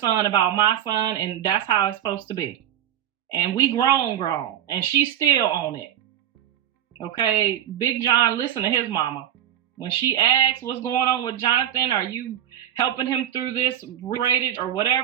about my son, and that's how it's supposed to be. And we grown, and she's still on it. Okay, Big John, listen to his mama. When she asks what's going on with Jonathan, are you helping him through this rated or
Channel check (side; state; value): left; quieter; 11.0 dB